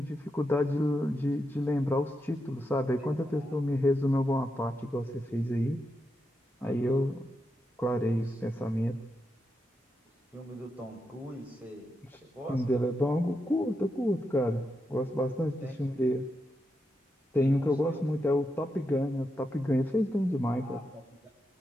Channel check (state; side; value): normal; both; correlation 0.86